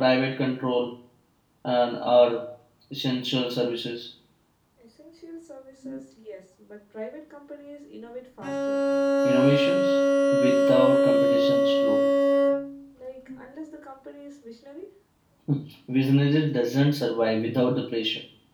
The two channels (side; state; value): both; identical; correlation 1.00